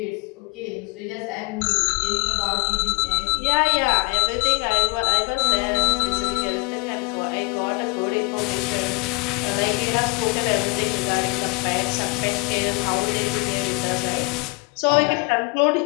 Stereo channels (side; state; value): right; quieter; 29.4 dB